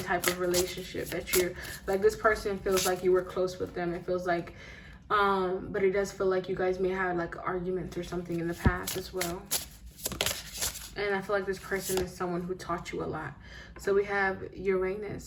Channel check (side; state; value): both; identical; correlation 1.00